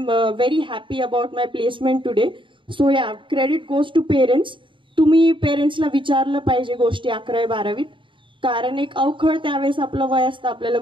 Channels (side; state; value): left; late; 0.24 ms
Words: very happy about my placement today. So yeah, credit goes to parents. तुम्ही पेरेंट्सला विचारलं पाहिजे गोष्टी 11वी-12वीत, कारण एक अवखळ त्यावेळेस आपलं वय असतं, आपल्याला